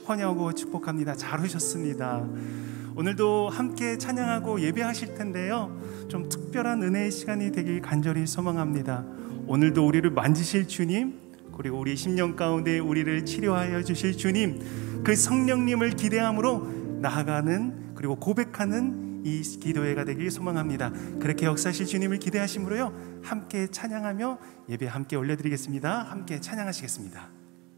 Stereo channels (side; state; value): left; quieter; 25.3 dB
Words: 환영하고 축복합니다. 잘 오셨습니다. 오늘도 함께 찬양하고 예배하실 텐데요, 좀 특별한 은혜의 시간이 되길 간절히 소망합니다. 오늘도 우리를 만지실 주님, 그리고 우리 심령 가운데 우리를 치료하여 주실 주님, 그 성령님을 기대함으로 나아가는, 그리고 고백하는 이 기도회가 되길 소망합니다. 그렇게 역사하실 주님을 기대하심으로요, 함께 찬양하며 예배 함께 올려드리겠습니다. 함께 찬양하시겠습니다.